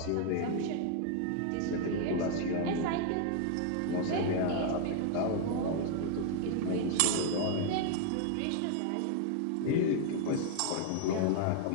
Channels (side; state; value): both; different; correlation 0.00